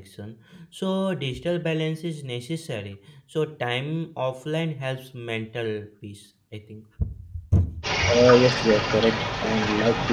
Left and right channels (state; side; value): identical; both; correlation 1.00